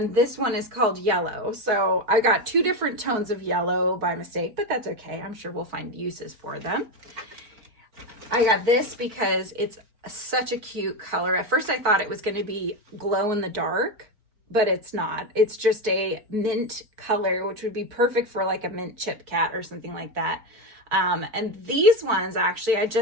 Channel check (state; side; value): late; left; 4.4 ms